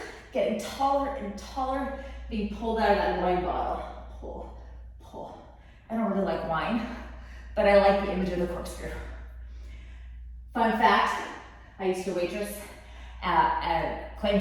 getting taller and taller, being pulled out of that wine bottle. Pull, pull. I don't really like wine, but I like the image of the corkscrew. Fun fact, I used to waitress at Claim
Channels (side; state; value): both; identical; correlation 1.00